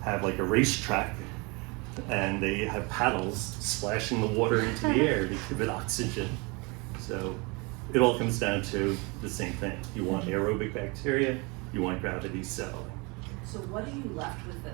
have like a racetrack, and they have paddles splashing the water into the air to give it oxygen. So it all comes down to the same thing. You want aerobic bacteria, you want gravity settling. So what are you left with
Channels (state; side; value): quieter; left; 28.4 dB